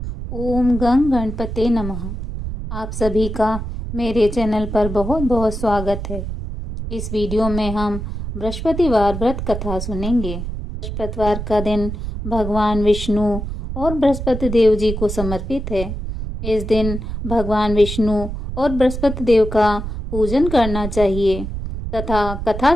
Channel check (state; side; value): noise; right; rumble, 6 dB below the sound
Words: ओम गं गणपते नमः। आप सभी का मेरे चैनल पर बहुत बहुत स्वागत है। इस वीडियो में हम बृहस्पतिवार व्रत कथा सुनेंगे। बृहस्पतिवार का दिन भगवान विष्णु और बृहस्पति देव जी को समर्पित है। इस दिन भगवान विष्णु और बृहस्पति देव का पूजन करना चाहिए तथा कथा